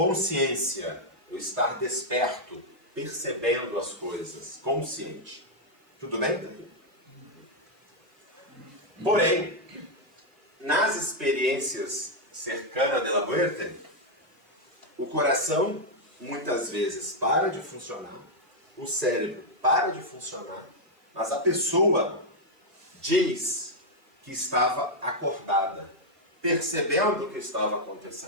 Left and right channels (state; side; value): late; left; 2.5 ms